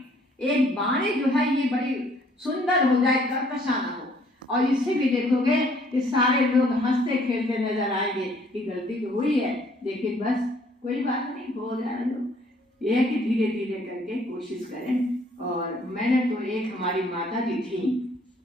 एक बाणी जो है ये बड़ी सुंदर हो जाए, कर्कशा ना हो, और इससे भी देखोगे कि सारे लोग हंसते खेलते नजर आएंगे कि गलती तो हुई है लेकिन बस कोई बात नहीं, हो जाए लोग। यह है कि धीरे धीरे करके कोशिश करें। और मैंने तो एक हमारी माता जी थी,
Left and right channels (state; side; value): normal; both; correlation 0.62